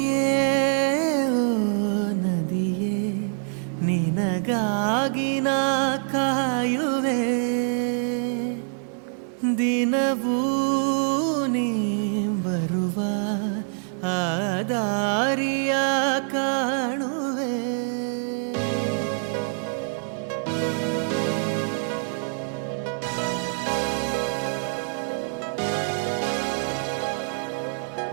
ಓ ನದಿಯೇ ನಿನಗಾಗಿ ನಾ ಕಾಯುವೆ ದಿನವೂ ನೀ ಬರುವ ಆ ದಾರಿಯ ಕಾಣುವೆ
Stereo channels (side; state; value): left; silent; digital silence